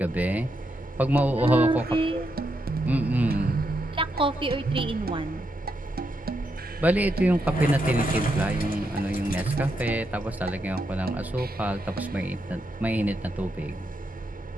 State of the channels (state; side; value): normal; both; correlation 0.82